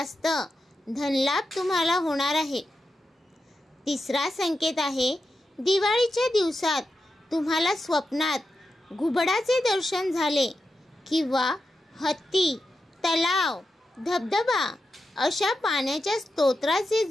धनलाभ तुम्हाला होणार आहे। तिसरा संकेत आहे दिवाळीच्या दिवसात तुम्हाला स्वप्नात घुबडाचे दर्शन झाले किंवा हत्ती, तलाव, धबधबा अशा पाण्याच्या स्तोत्राचे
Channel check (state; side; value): normal; both; correlation 0.89